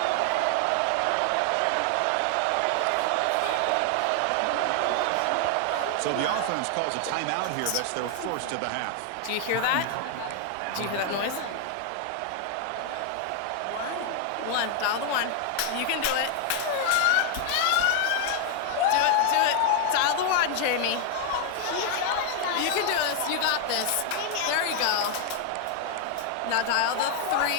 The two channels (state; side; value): different; both; correlation 0.00